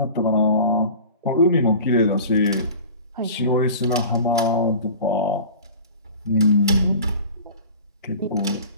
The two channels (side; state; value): both; inverted; correlation -0.39